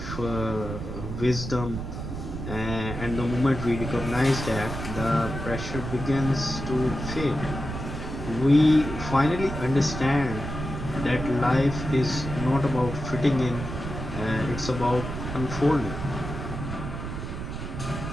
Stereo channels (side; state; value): right; noise; rumble, 6 dB below the sound